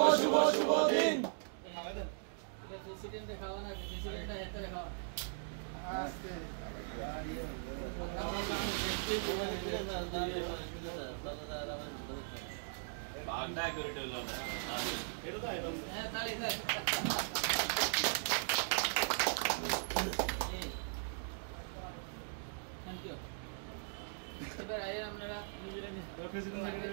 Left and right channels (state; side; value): silent; left; digital silence